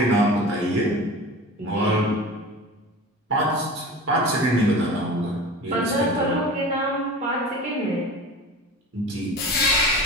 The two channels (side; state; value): both; normal; correlation 0.35